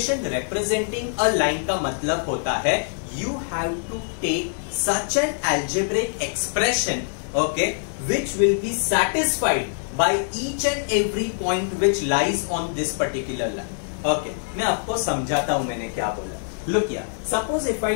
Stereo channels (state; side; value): silent; right; digital silence